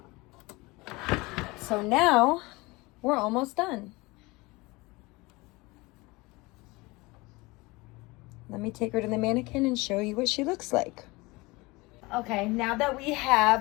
So now we're almost done. Let me take her to the mannequin and show you what she looks like. Okay, now that we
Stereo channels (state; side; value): quieter; right; 23.3 dB